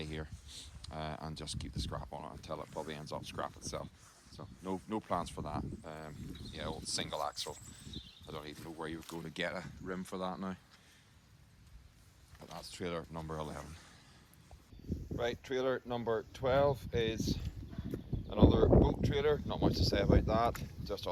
here and just keep the scrap on it until it probably ends up scrap itself. So no plans for that. Yeah, old single axle. I don't even know where you would go to get a rim for that now. But that's trailer number 11. Right, trailer number 12 is another boat trailer. Not much to say about that, just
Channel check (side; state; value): both; identical; correlation 1.00